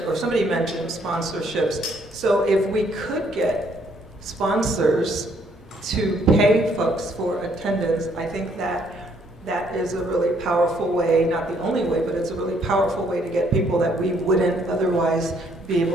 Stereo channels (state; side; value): normal; both; correlation 0.67